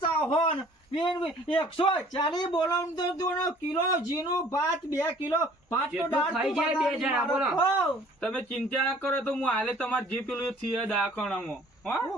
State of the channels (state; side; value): normal; both; correlation 0.54